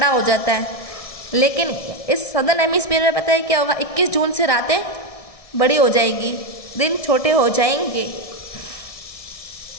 हो जाता है, लेकिन इस सदर्न हेमिस्फीयर में पता है क्या होगा, 21 जून से रातें बड़ी हो जाएगी, दिन छोटे हो जाएंगे।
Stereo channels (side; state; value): right; late; 1.6 ms